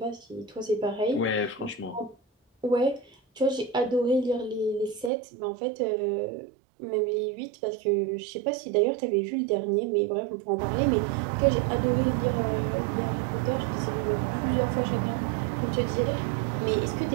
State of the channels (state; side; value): drops out; left; at 5.1 s